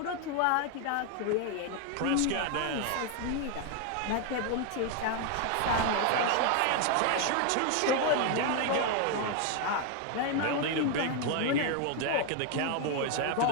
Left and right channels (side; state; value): both; different; correlation 0.01